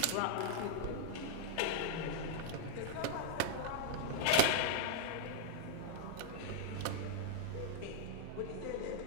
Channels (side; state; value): both; different; correlation -0.01